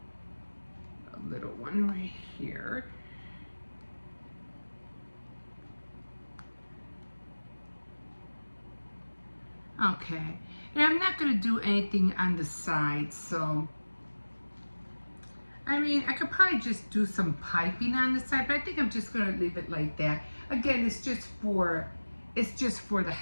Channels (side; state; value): both; inverted; correlation -1.00